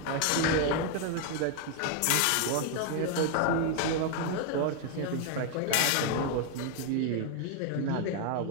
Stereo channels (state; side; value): different; both; correlation 0.00